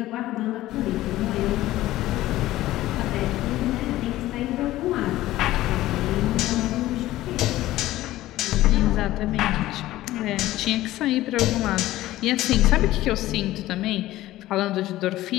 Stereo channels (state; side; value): quieter; right; 15.8 dB